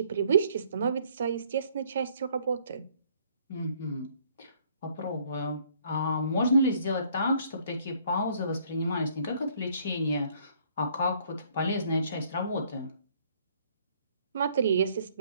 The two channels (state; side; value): inverted; both; correlation -0.62